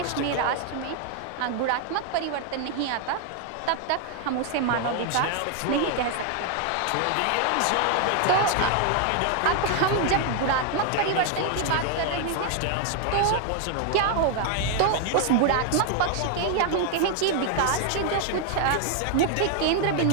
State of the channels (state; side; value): different; both; correlation 0.00